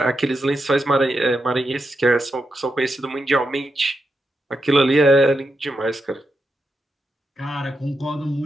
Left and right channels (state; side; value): normal; both; correlation 0.86